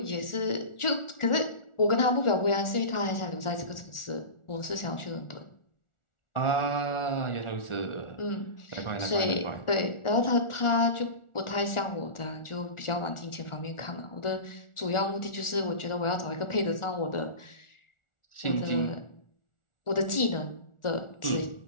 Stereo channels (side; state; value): right; late; 1.4 ms